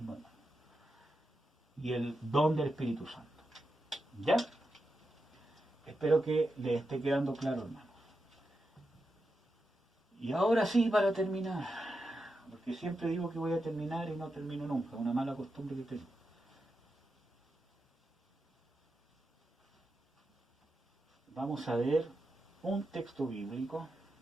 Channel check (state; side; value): normal; both; correlation 0.88